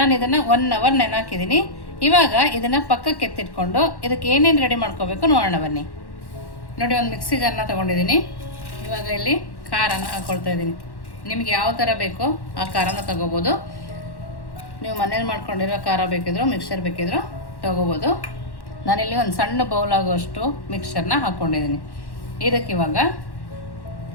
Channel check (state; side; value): late; right; 1.1 ms